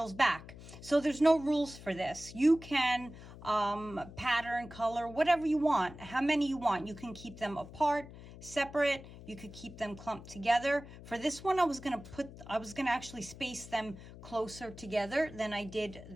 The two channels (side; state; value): left; noise; hum, 16 dB below the sound